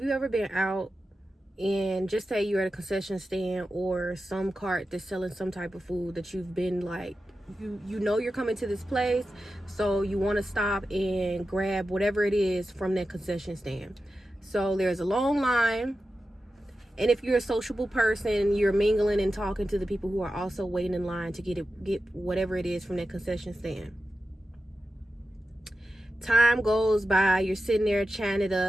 you ever been out and just say you're at a concession stand or some cart that's selling some type of food that you've been like, you know you're coming to this place, so you want to stop and grab whatever it is from that concession stand. So there's a long line, and if you're a sociable person, you're mingling and talking to the people who are also waiting in line to get whatever it is from that concession stand. Time goes by, you're sitting there chatting it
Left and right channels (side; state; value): both; normal; correlation 0.92